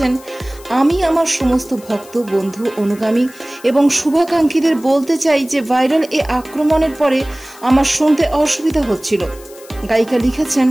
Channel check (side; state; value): left; noise; hiss, 22 dB below the sound